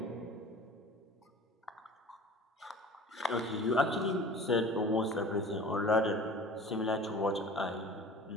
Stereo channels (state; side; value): normal; both; correlation 0.41